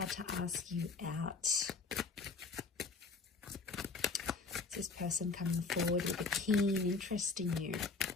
to ask you out? This person coming forward with a keen interest in you.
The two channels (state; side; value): quieter; right; 4.4 dB